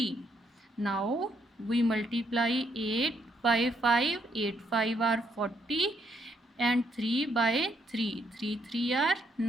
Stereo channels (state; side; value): normal; both; correlation 0.74